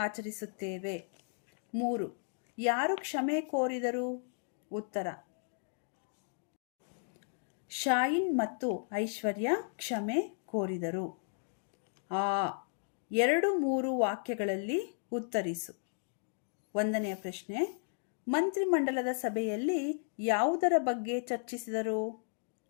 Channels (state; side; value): silent; right; digital silence